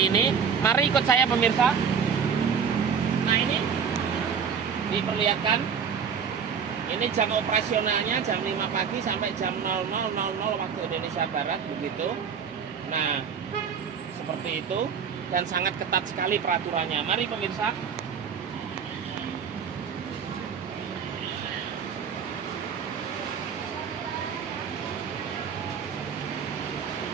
ini. Mari ikut saya pemirsa. Nah, ini diperlihatkan. Ini jam operasionalnya jam 5 pagi sampai jam 00.00 waktu Indonesia Barat begitu. Nah, seperti itu, dan sangat ketat sekali peraturannya. Mari pemirsa.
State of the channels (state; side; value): quieter; left; 6.8 dB